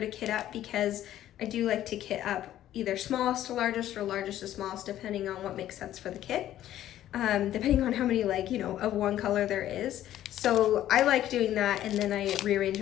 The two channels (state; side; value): quieter; right; 12.6 dB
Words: kit up because I do like to kit up either smallest to largest or largest to smallest, depending on what makes sense for the kit. Depending on how many, like, you know, of one color there is. So I like doing that, and then I rearrange